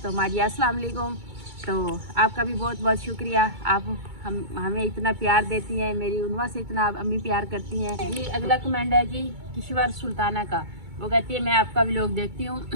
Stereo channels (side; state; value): left; late; 2.2 ms